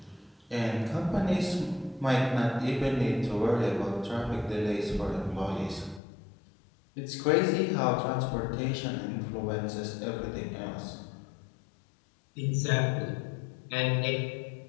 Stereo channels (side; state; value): right; drops out; at 6.0 s